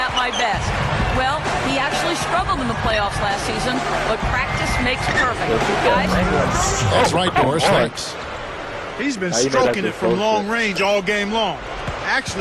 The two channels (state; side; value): identical; both; correlation 1.00